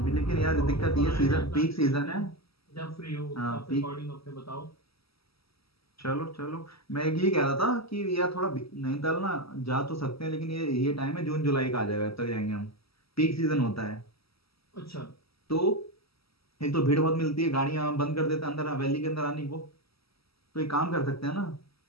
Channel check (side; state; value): right; late; 0.76 ms